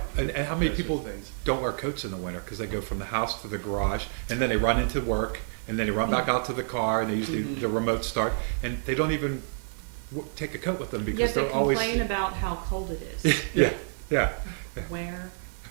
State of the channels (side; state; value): left; silent; digital silence